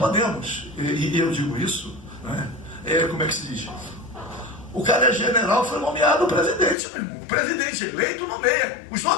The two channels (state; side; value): drops out; right; at 6.8 s